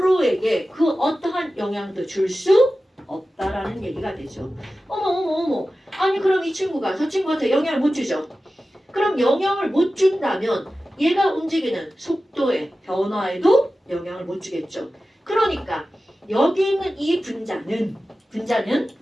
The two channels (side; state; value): both; normal; correlation 0.94